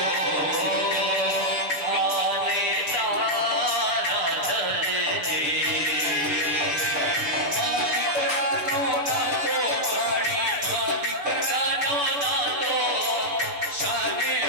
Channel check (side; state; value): left; late; 6.9 ms